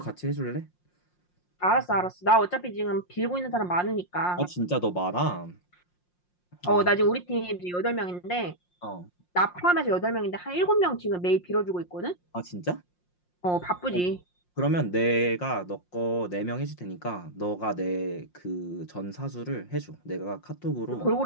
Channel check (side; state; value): right; late; 5.6 ms